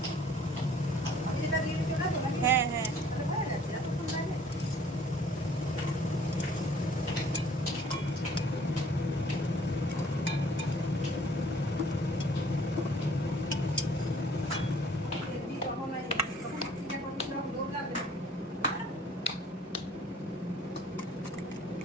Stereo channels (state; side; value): normal; both; correlation 0.56